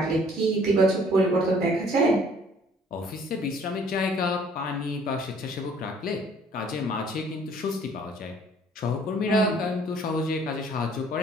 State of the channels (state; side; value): normal; both; correlation 0.57